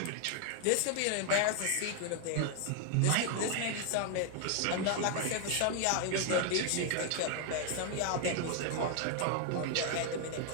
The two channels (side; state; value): both; different; correlation 0.00